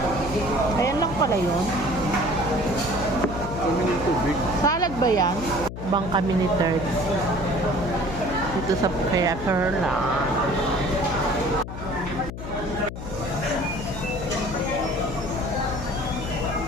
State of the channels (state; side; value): noise; left; hum, 8 dB below the sound